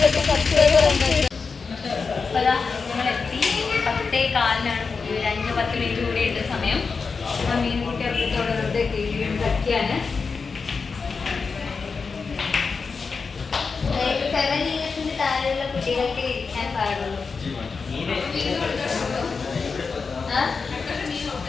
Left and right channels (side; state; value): right; quieter; 4.9 dB